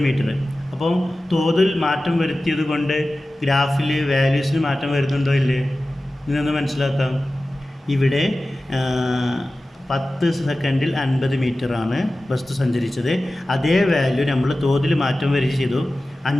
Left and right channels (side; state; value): both; normal; correlation 0.96